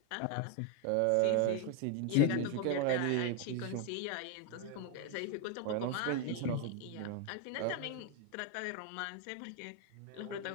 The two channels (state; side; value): different; both; correlation 0.01